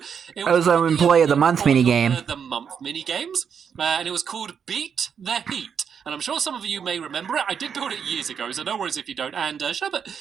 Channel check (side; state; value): left; quieter; 7.2 dB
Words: it was an Employee of the Month minigame. The month minigames, and it was called Beat the Heat. And I'm sure some of you may remember it. I did build it years ago, so no worries if you don't. And Sherbet,